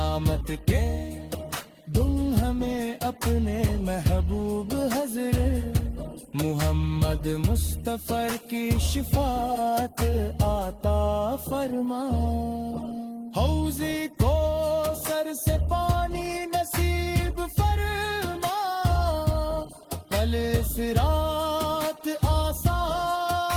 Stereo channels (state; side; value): identical; both; correlation 1.00